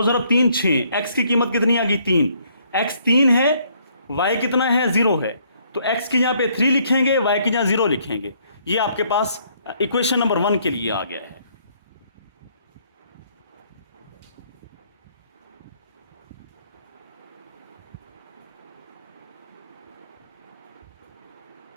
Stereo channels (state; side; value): inverted; both; correlation -0.66